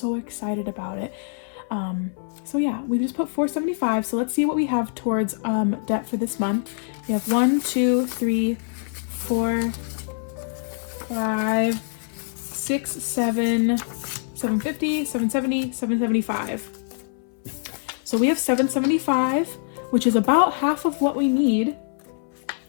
excited about it. So yeah, we just put $475. So let's see what we have towards debt for this month. We have 1, 2, 3, 4, 5, 6, 7, 750, 770, 775. So we have $775, which is about half of what we need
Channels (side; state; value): right; silent; 62 dB below the other